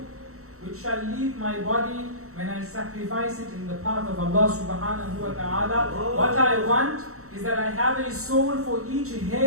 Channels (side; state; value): left; late; 0.64 ms